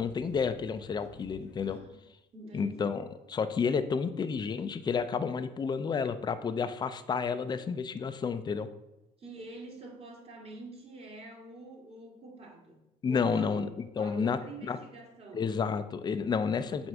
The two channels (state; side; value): quieter; right; 5.3 dB